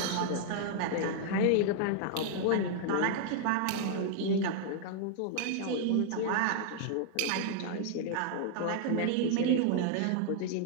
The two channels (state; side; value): different; both; correlation 0.00